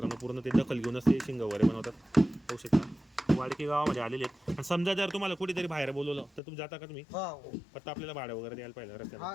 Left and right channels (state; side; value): drops out; right; at 6.4 s